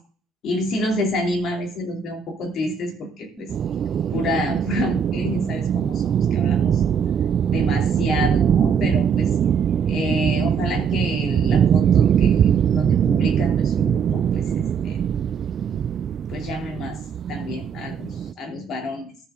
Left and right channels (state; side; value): quieter; left; 6.1 dB